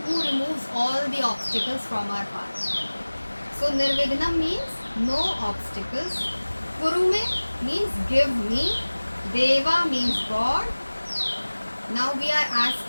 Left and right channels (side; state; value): both; inverted; correlation -1.00